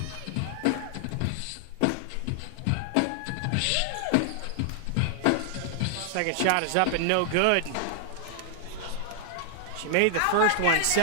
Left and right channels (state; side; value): different; both; correlation 0.00